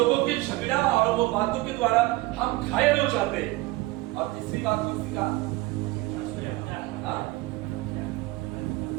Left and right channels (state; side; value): quieter; left; 20.0 dB